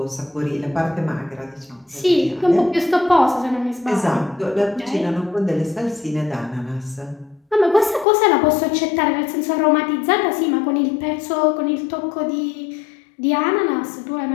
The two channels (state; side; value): drops out; right; at 8.1 s